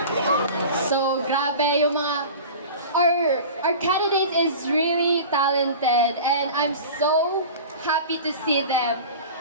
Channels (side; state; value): both; inverted; correlation -0.36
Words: So, grabe yung mga... Our candidate is really talented and I'm so happy to see them.